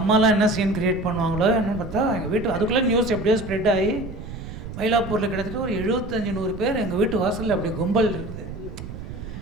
அம்மாலாம் என்ன சீன் க்ரியேட் பண்ணுவாங்களோ என்னன்னு பார்த்தா எங்கள் வீட்டு அதுக்குள்ளே நியூஸ் எப்படியோ ஸ்ப்ரெட் ஆகி மயிலாப்பூரில் கிட்டத்தட்ட ஒரு 75-100 பேர் எங்கள் வீட்டு வாசலில் அப்படி கும்பல் இருக்குது.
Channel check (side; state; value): right; noise; rumble, 10 dB below the sound